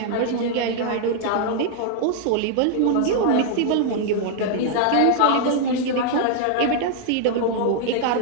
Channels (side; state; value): both; different; correlation 0.00